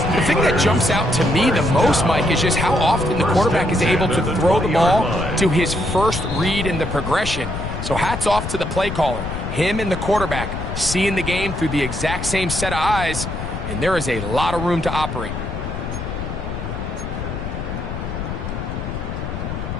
The thing that jumps out to me the most, Mike, is just how often the quarterback is able to throw the ball to his first read in the progression. So hats off to the play caller. Him and the quarterback seeing the game through the exact same set of eyes, and there is a lot of room to operate.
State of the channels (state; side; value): noise; left; rumble, 5 dB below the sound